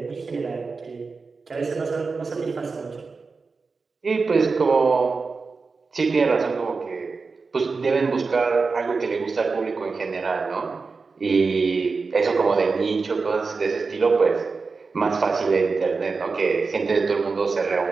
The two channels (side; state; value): left; quieter; 4.4 dB